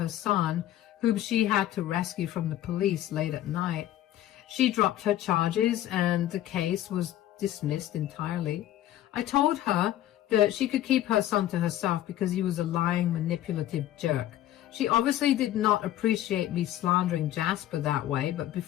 son, whom she had to rescue from the police late at night. She dropped her charges and the case was dismissed entirely. I told her that she could keep her son to herself because he was a lying, manipulative jerk. She obviously did not appreciate me slandering Jasper that way, but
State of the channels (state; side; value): quieter; right; 13.0 dB